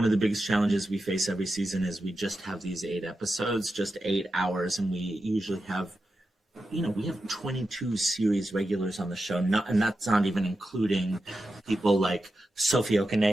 of the biggest challenges we face every season is we just have these 8 episodes, just 8 hours, and we usually have, we have 22 series regulars on the show, and that's not even including people like Sophie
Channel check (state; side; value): normal; both; correlation 0.90